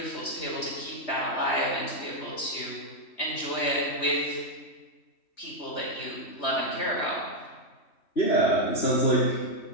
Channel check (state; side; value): late; right; 3.1 ms